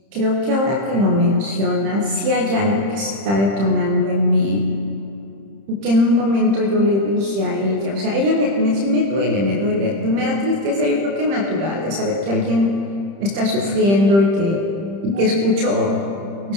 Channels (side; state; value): left; late; 30 ms